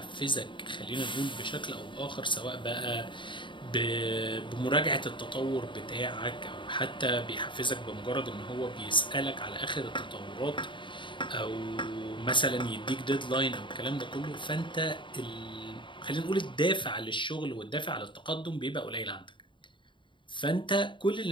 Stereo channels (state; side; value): late; right; 0.23 ms